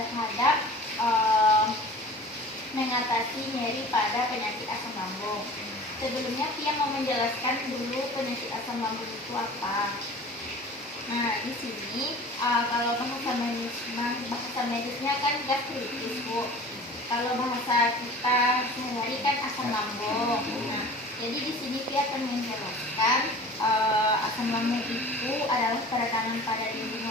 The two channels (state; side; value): normal; both; correlation 0.41